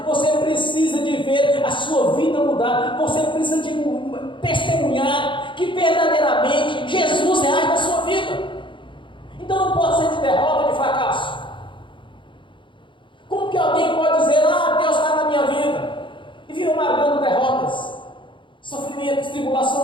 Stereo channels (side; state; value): right; late; 0.24 ms